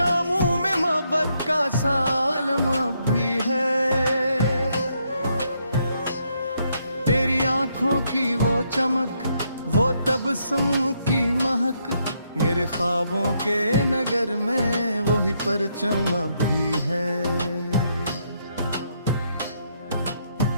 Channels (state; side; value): inverted; both; correlation -0.76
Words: में मोहब्बत का सालम अब भी है। तेरी आंखों की वो चमक, वो तबस्सुम की महक, मेरे ख्वाबों के नगर में वही परचम अब भी है।